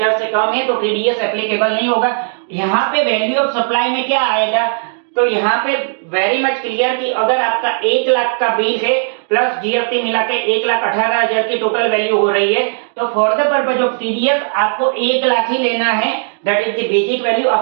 से कम है तो टीडीएस एप्लीकेबल नहीं होगा। यहाँ पे वैल्यू ऑफ सप्लाई में क्या आएगा, तो यहाँ पे वेरी मच क्लियर कि अगर आपका 1 लाख का बिल है प्लस जीएसटी मिला के 1,18,000 की टोटल वैल्यू हो रही है, तो for the purpose of TDS आपको 1 लाख ही लेना है, that is the basic value.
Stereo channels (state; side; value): silent; left; digital silence